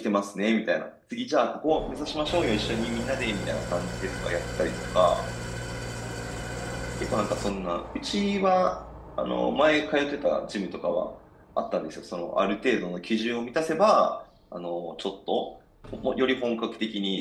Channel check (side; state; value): both; identical; correlation 1.00